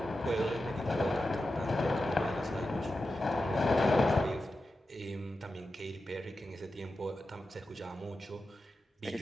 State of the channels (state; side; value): normal; both; correlation 0.91